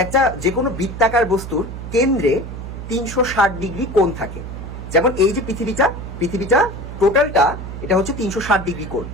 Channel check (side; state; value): right; noise; hum, 9 dB below the sound